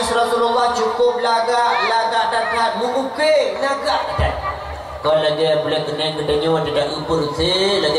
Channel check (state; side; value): identical; both; correlation 1.00